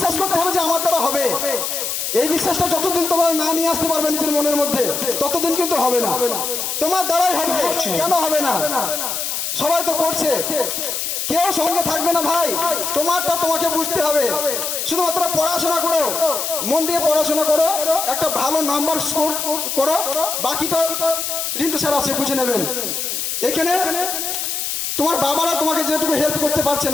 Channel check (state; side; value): noise; left; hiss, 2 dB below the sound